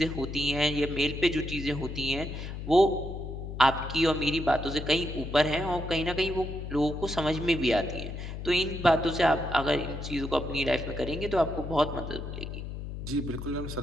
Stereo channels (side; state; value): left; noise; hum, 7 dB below the sound